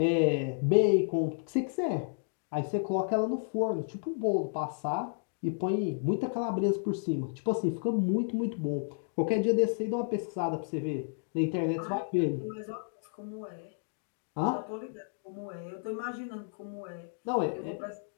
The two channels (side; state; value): right; silent; digital silence